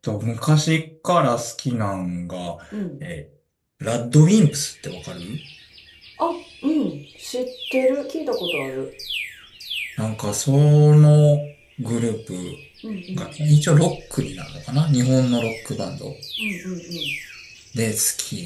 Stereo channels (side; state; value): both; identical; correlation 1.00